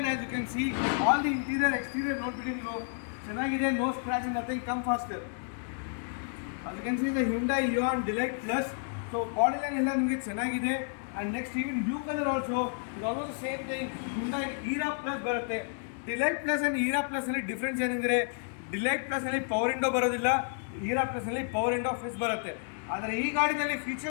as you can see, all the interior exterior ನೋಡ್ಬಿಟ್ಟು ನೀವು ಚೆನ್ನಾಗಿದೆ. No scratch, nothing, come faster. ಅದು can see the Hyundai Eon Delight plus. So body line ಎಲ್ಲ ನಿಮಗೆ ಚೆನ್ನಾಗಿದೆ. And next even blue colour also ಇದು almost same thing. Hyundai Era plus ಬರುತ್ತೆ. Delight plus and Era ಪ್ಲಸ್ನಲ್ಲಿ difference ಏನೆಂದರೆ, Delight ಪ್ಲಸ್ನಲ್ಲಿ power window ಬರೋದಿಲ್ಲ, ಈರಾ ಪ್ಲಸ್ನಲ್ಲಿ ಪವರ್ ವಿಂಡೋ ಫಿಕ್ಸ್ ಬರುತ್ತೆ. ಆದರೆ ಈ ಗಾಡಿನಲ್ಲಿ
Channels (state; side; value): silent; right; 57 dB below the other